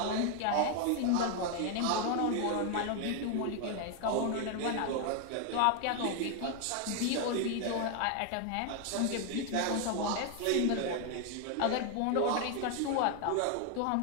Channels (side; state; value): both; different; correlation 0.01